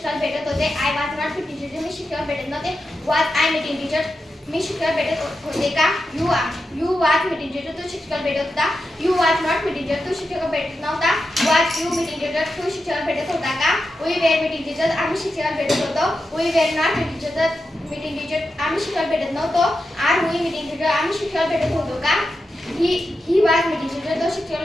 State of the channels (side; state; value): both; normal; correlation 0.89